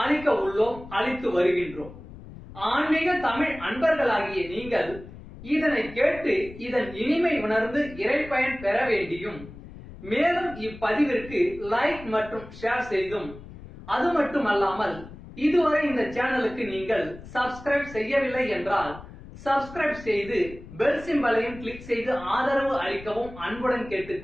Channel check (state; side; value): noise; left; rumble, 16 dB below the sound